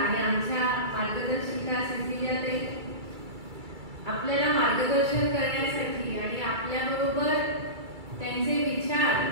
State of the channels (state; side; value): late; left; 2.3 ms